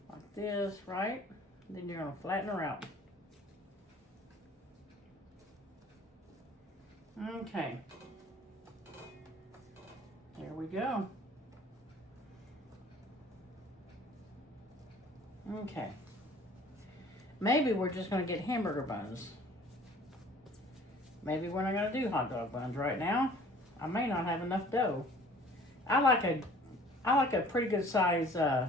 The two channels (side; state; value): both; normal; correlation 0.51